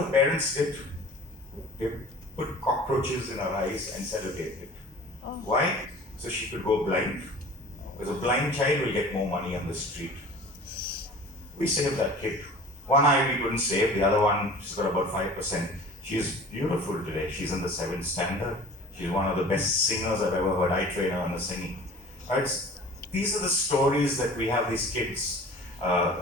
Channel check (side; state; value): both; normal; correlation 0.43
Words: the parents did? They put cockroaches in her eyes and sellotape it. Oh. Why? So she could go blind. Because a blind child will get more money on the street. We saved that kid. One eye we couldn't save, the other one, she's got about 5%. She's beautiful today. She's in the 7th standard. She's one of the best singers I've ever heard. I train her in the singing. Right? These are the stories that we have, these kids